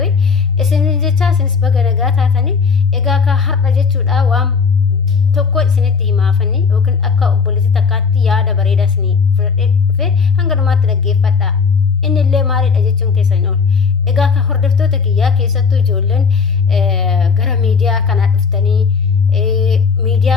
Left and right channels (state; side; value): quieter; right; 5.5 dB